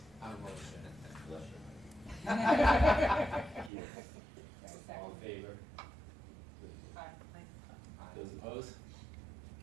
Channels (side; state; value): left; drops out; at 3.7 s